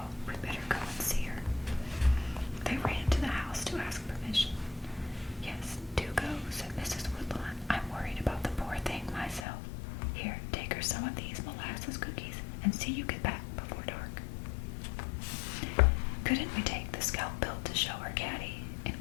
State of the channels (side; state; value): right; drops out; at 9.5 s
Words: We better go and see her." They ran to the house to ask permission. "Yes, do go," said Mrs. Woodlawn. "I'm worried about the poor thing myself. Here, take her some of these molasses cookies and see you get back before dark." "Couldn't we take the scalp belt to show her, Caddie?"